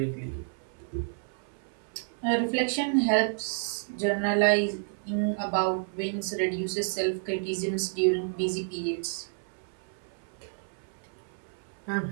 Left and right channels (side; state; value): left; silent; 57 dB below the other